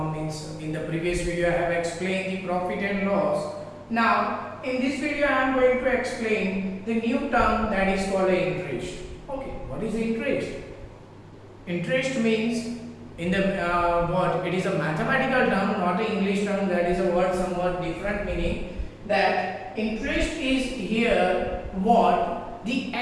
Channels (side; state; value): both; identical; correlation 1.00